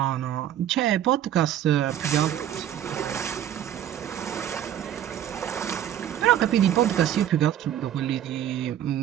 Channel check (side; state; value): left; quieter; 10.9 dB